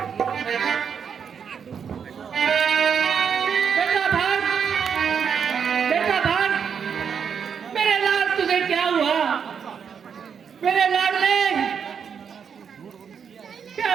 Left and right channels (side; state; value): left; quieter; 7.1 dB